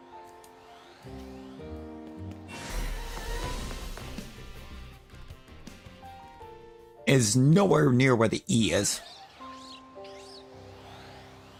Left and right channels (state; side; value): identical; both; correlation 1.00